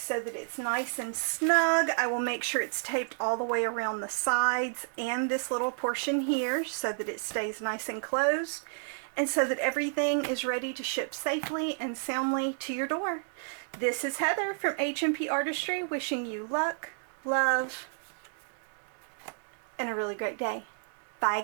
that it's nice and snug. I will make sure it's taped all the way around the sides and this little portion here so that it stays nice and closed, and so that everything is ready to ship safely and soundly to your door. This is Heather from H&P Artistry, wishing you luck, love, and a really great day. Bye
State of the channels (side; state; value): left; silent; digital silence